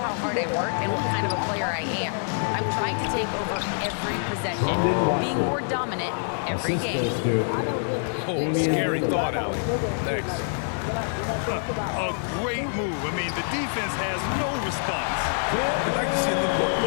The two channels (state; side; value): silent; right; digital silence